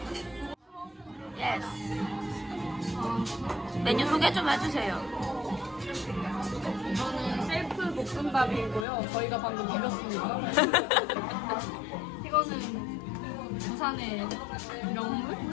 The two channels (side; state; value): right; drops out; at 8.8 s